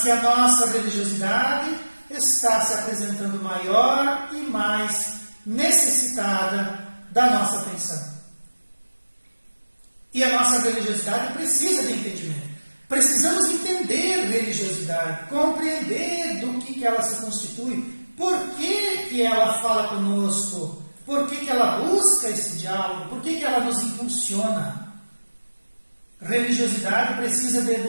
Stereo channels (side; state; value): both; inverted; correlation -1.00